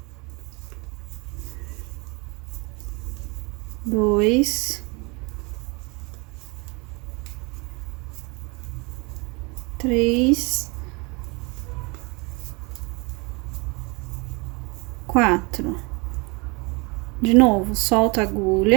2, 3, 4. De novo, solta a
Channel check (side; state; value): left; quieter; 28.5 dB